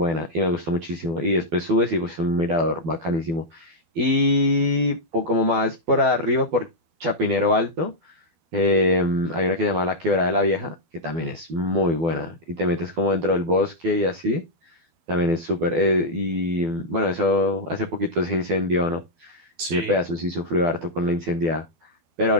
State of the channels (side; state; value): left; late; 12 ms